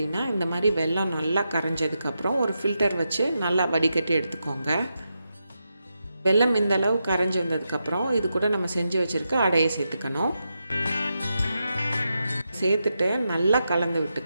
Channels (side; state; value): both; inverted; correlation -0.86